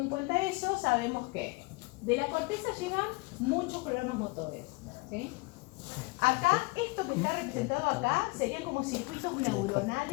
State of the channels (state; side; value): quieter; right; 25.8 dB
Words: cuenta eso, sabemos que de la corteza llegan muchos programas motores. ¿Sí? Acá, esto que está representado acá, serían como circuitos